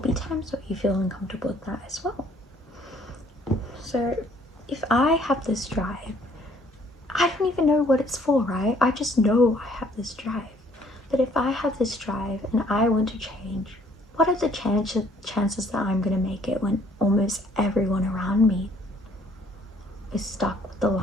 times where you feel uncomfortable with that as well. So if I have this drive, I don't even know what it's for, right? I just know I have this drive. But if I have this drive and I want to change, what are the chances that I'm going to make it when almost everyone around me is stuck with the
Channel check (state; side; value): normal; both; correlation 0.61